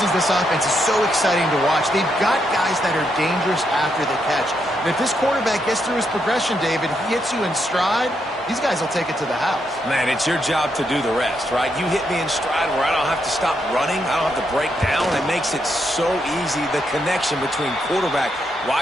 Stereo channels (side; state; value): both; normal; correlation 0.79